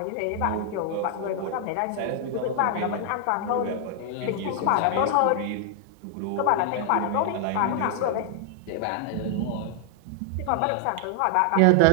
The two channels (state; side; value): different; both; correlation 0.00